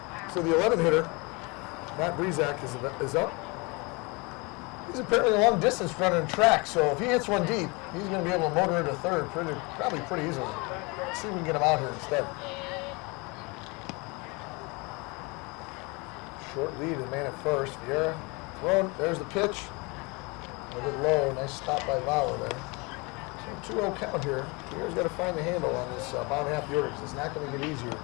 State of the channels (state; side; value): quieter; right; 27.8 dB